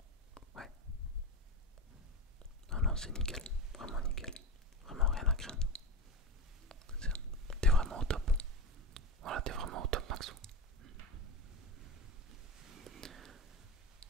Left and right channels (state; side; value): normal; both; correlation 0.21